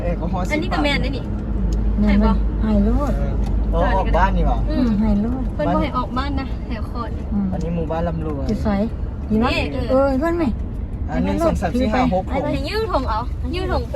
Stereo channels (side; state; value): both; identical; correlation 1.00